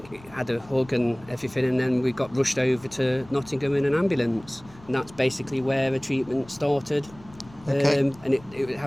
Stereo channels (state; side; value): noise; left; rumble, 22 dB below the sound